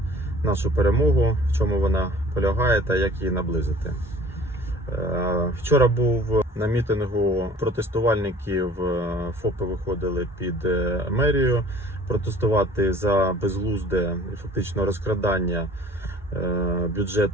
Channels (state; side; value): normal; both; correlation 0.49